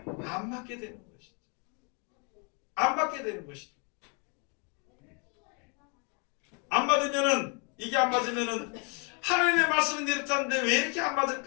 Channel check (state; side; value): quieter; right; 35.8 dB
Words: 안 맞게 되는 것이죠. 안 맞게 되는 것이죠. 이게 안 맞으면은 하나님의 말씀은 이렇다는데 왜 이렇게 안